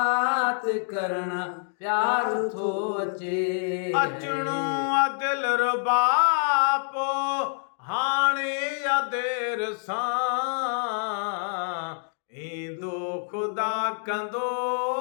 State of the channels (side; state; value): right; silent; digital silence